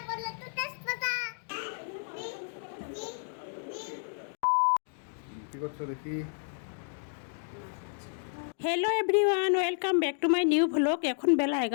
কি করছো দেখি? Hello everyone, welcome back to my new vlog. এখন বেলা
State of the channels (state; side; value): silent; right; digital silence